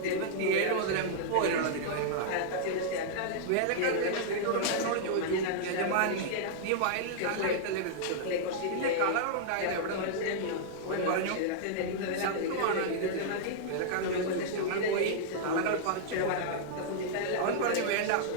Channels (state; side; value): different; both; correlation -0.02